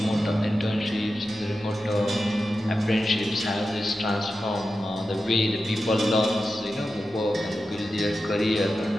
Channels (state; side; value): normal; both; correlation 0.91